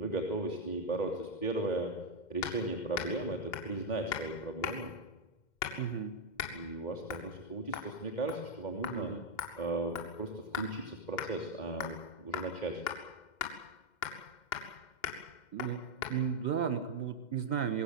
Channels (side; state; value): right; late; 2.1 ms